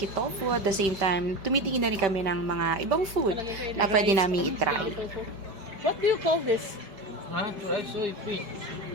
tofu at the same time tumitingin na rin kami ng mga ibang food na pwede namin itry. What do you call this? Huh? Dried soybean.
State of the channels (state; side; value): late; left; 5.0 ms